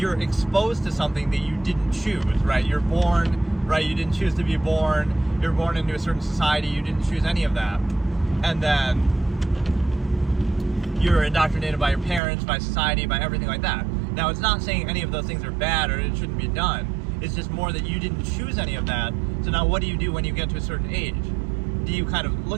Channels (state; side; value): drops out; left; at 12.2 s